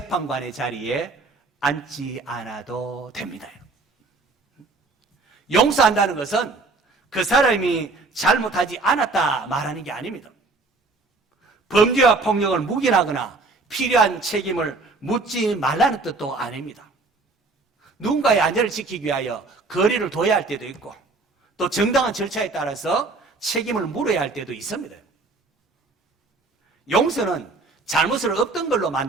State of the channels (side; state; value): left; quieter; 3.6 dB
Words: 자리에 앉지 않아도 됩니다. 용서한다는 것은 그 사람이 잘못하지 않았다 말하는 게 아닙니다. 범죄와 폭력을 묵인하거나 필요한 책임을 묻지 말라는 뜻도 아닙니다. 누군가의 안전을 지키기 위하여 거리를 둬야 할 때도 있고 또 정당한 절차에 따라서 책임을 물어야 할 때도 있습니다. 용서는 잘못을 없던 걸로